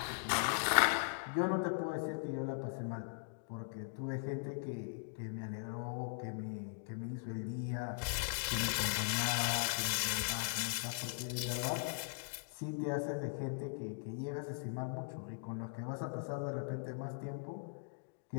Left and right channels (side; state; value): right; silent; digital silence